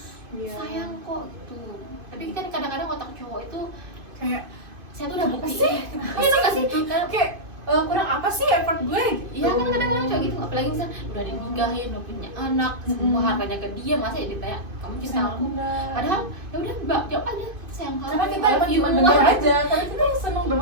Iya. sayang kok gitu. Tapi kan kadang-kadang otak cowok itu Kayak saya tuh udah bukti. sih? Iya tuh nggak sih? kayak kurang apa sih effort gue? Iya kan kadang-kadang cowok gitu, apalagi misal udah dinikahin, udah punya anak, semua hartanya ke dia, masa jadi tanya kamu cinta aku? Padahal ya udah mbak jawab aja sayang kamu. Karena kita I love emang you. cuma denger aja, karena kita seneng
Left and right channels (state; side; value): late; left; 2.5 ms